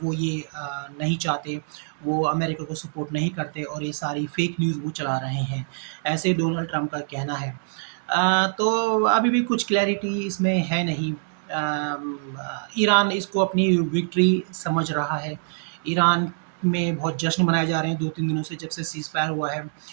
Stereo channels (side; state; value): left; silent; 62 dB below the other